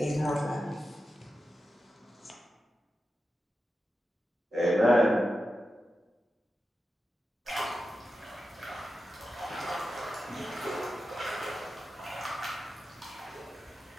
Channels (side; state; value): both; normal; correlation 0.91